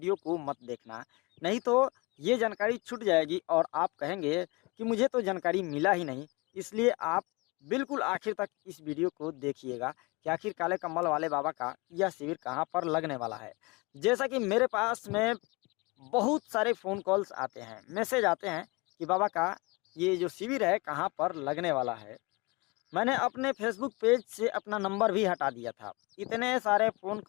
को मत देखना, नहीं तो ये जानकारी छूट जाएगी और आप कहेंगे कि मुझे तो जानकारी मिला ही नहीं। इसलिए आप बिल्कुल आखिर तक इस वीडियो को देखिएगा कि आखिर काले कंबल वाले बाबा का यह शिविर कहाँ पर लगने वाला है। जैसा कि मेरे पास में बहुत सारे फ़ोन कॉल्स आते हैं, मैसेज आते हैं कि बाबा का ये जो शिविर है कहाँ पर लगने वाला है। मैंने अपने फेसबुक पेज से अपना नंबर भी हटा दिया था। इतने सारे फ़ोन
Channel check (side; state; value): right; quieter; 26.1 dB